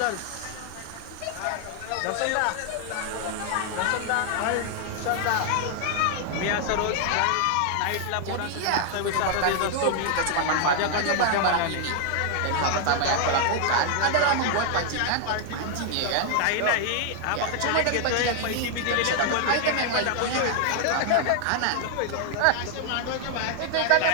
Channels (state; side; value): different; both; correlation 0.00